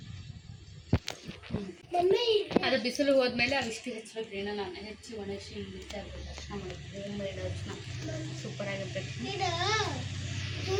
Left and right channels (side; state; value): both; identical; correlation 1.00